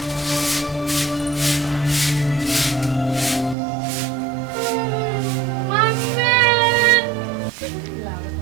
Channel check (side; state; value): left; drops out; at 3.6 s